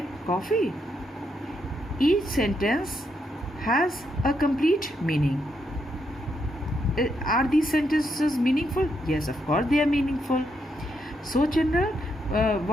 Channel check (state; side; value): normal; both; correlation 0.79